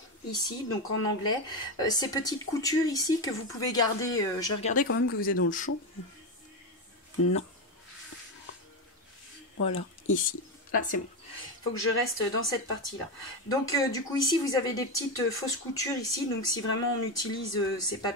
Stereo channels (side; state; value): both; normal; correlation 0.13